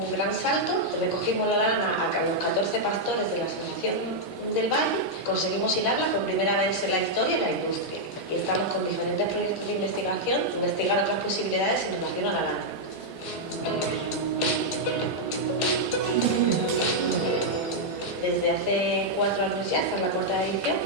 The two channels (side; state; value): both; normal; correlation -0.04